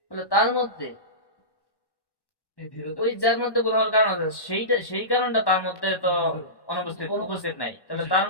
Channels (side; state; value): right; late; 1.1 ms